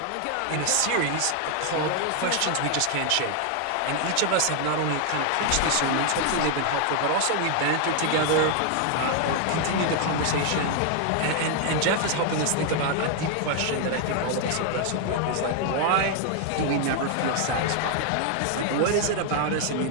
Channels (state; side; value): different; both; correlation 0.00